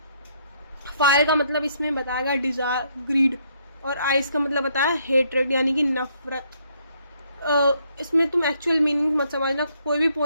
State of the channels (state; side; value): inverted; both; correlation -0.70